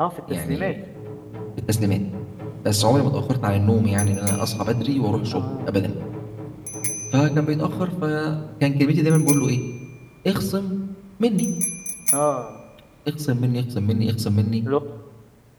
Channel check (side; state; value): both; identical; correlation 1.00